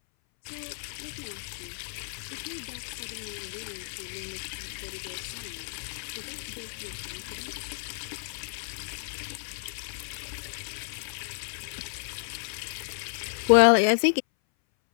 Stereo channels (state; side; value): silent; right; 57 dB below the other